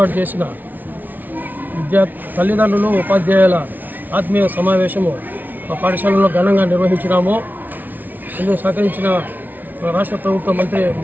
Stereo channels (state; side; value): late; left; 0.083 ms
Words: చేసిన తల్లిదండ్రులు ఉపాధ్యాయుల ఆత్మీయ సమావేశము మా పాఠశాలలో ఘనంగా నిర్వహించినాము. ఇందుకు సహకరించిన రాష్ట్ర ప్రభుత్వ